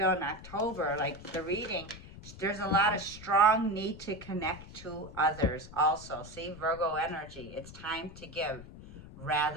in October, like the reading, there's a lot of strong need to connect to others also. See, Virgo energy, it's time to give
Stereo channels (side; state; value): left; noise; rumble, 16 dB below the sound